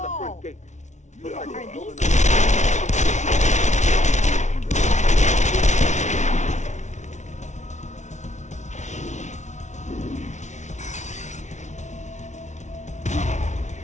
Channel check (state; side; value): late; right; 0.34 ms